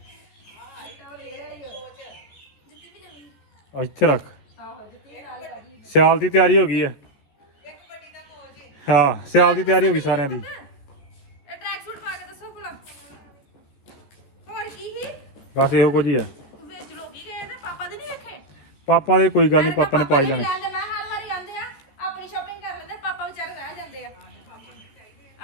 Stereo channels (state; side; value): late; right; 14 ms